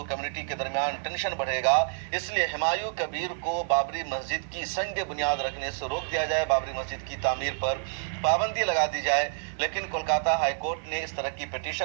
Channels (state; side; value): silent; left; 59 dB below the other